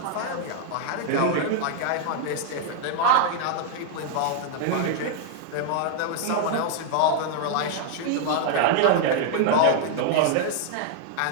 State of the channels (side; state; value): both; different; correlation -0.01